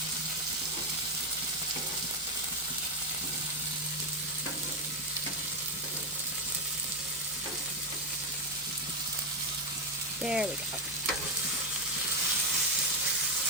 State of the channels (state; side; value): normal; both; correlation 0.06